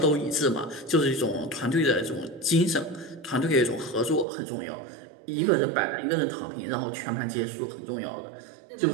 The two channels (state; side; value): drops out; left; at 4.2 s